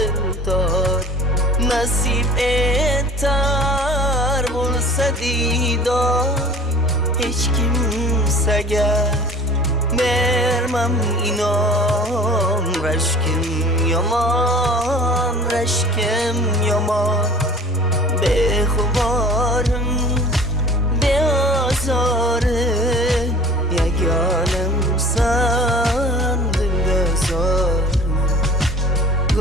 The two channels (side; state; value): both; normal; correlation 0.45